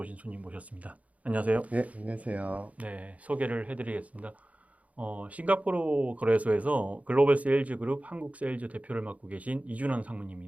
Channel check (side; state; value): left; late; 0.068 ms